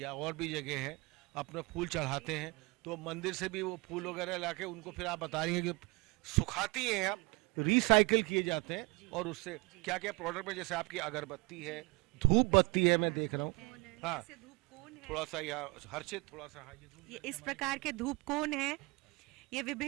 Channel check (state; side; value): quieter; left; 26.9 dB